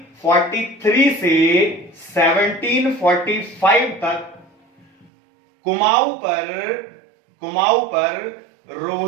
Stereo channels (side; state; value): left; drops out; at 5.1 s